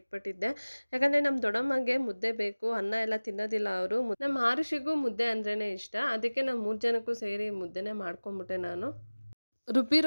ಯಾಕಂದರೆ ನಮ್ಮ ದೊಡ್ಡಮ್ಮಗೆ ಮುದ್ದೆ ಬೇಕು, ಅನ್ನ ಎಲ್ಲ ತಿನ್ನೋದಿಲ್ಲ ಅವರು. ನಮ್ಮ ಆರುಷಿಗೂ ಮುದ್ದೆ ಅಂದ್ರೇ ಇಷ್ಟ, ಅದಕ್ಕೆ ನಾವು 3 ಜನಕ್ಕೂ ಸೇರಿ ಮುದ್ದೆನೇ ಮಾಡ್ಕೊಂಬಿಟ್ಟೆ ನಾನು.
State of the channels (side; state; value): both; inverted; correlation -1.00